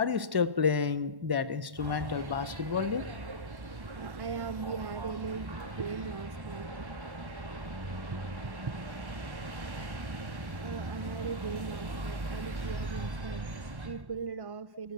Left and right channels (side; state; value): left; late; 1.1 ms